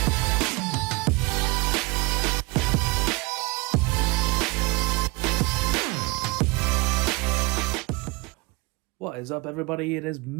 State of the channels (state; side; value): quieter; left; 25.3 dB